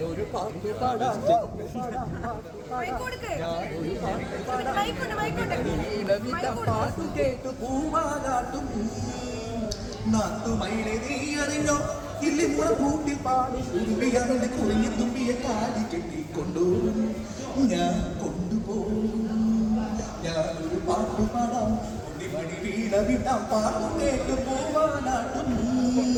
പാട്ട് പാടാം. പാട്ടു കേട്ടു പൂവാലാട്ടും നാത്തുമൈനെ നീ അറിഞ്ഞോ ഇല്ലി മുള കൂട്ടിൽ പാടും ഉരുവിയാതെ കുറിഞ്ഞു തുമ്പിയെ കാലി കെട്ടിക്കൊണ്ടുപോകും ഞാൻ കൊണ്ടുപോകും. ഞാനൊരു പാട്ടു പാടാം മണി വീണ വിട്ടാം പാട്ടു കേട്ടു പൂവാലാട്ടും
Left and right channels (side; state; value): both; identical; correlation 1.00